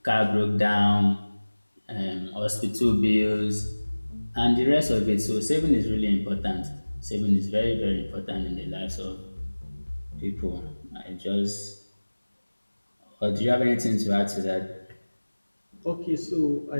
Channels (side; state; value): both; inverted; correlation -1.00